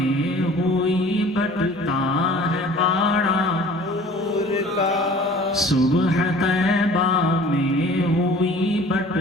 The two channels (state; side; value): normal; both; correlation 0.47